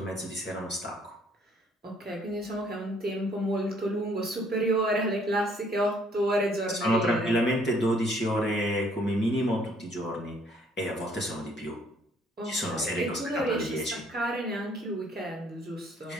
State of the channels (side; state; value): both; normal; correlation 0.63